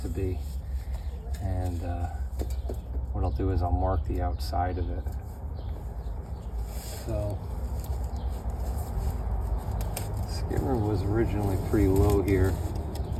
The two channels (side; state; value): both; identical; correlation 1.00